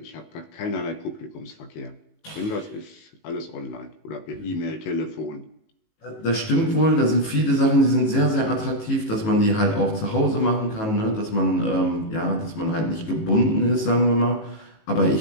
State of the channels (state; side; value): late; right; 19 ms